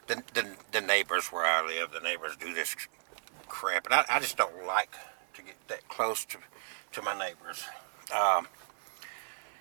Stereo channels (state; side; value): silent; left; 55 dB below the other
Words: The neighbors where I live, the neighbors do this crap, and I just don't like to get that close to my neighbors.